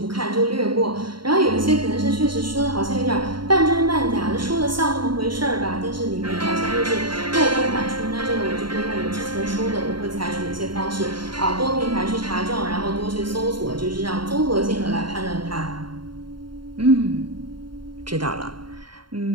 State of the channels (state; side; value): late; left; 0.72 ms